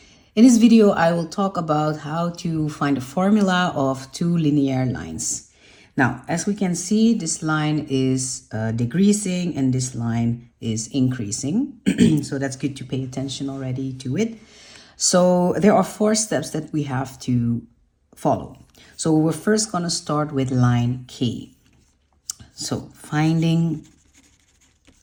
In this video, I will talk about how to find a formula of two linear lines. Now, as we can see, this line is decreasing and this line is increasing. So that's good to pay attention already to it. So there are 4 steps that we have to follow. So we're first going to start with line K. So finding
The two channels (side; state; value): both; identical; correlation 1.00